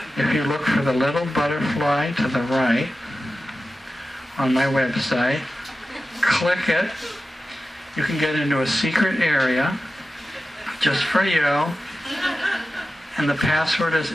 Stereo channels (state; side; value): normal; both; correlation 0.94